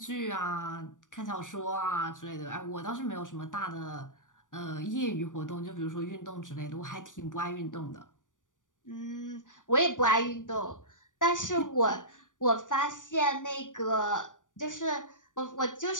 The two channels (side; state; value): right; late; 0.87 ms